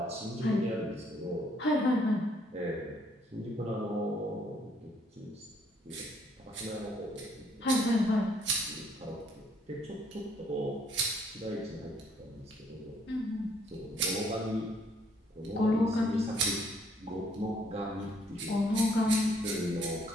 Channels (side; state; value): both; normal; correlation 0.66